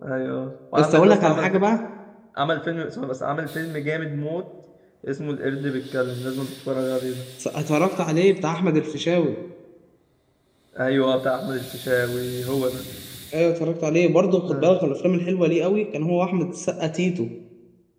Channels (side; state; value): both; identical; correlation 1.00